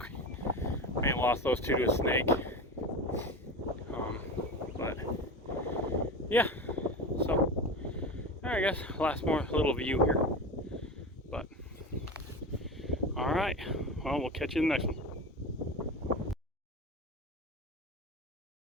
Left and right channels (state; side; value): normal; both; correlation 0.27